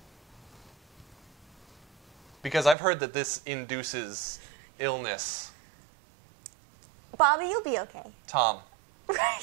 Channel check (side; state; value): left; drops out; at 2.8 s